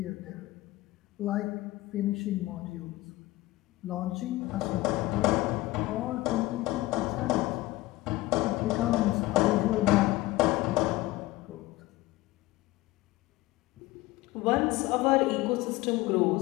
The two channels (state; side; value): quieter; right; 18.8 dB